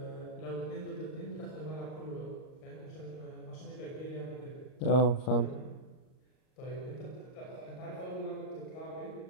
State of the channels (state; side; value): late; right; 38 ms